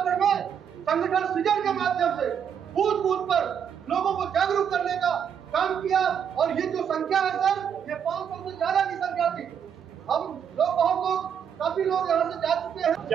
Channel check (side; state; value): left; quieter; 8.0 dB